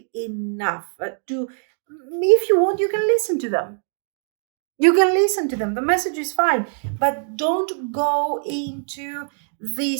enough to, if you want, you can listen to them. You can listen to them. The message is fine, but don't go into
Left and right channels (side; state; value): left; silent; 57 dB below the other